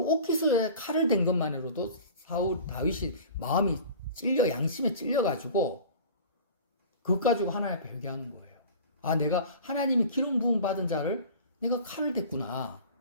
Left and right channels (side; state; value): both; inverted; correlation -0.39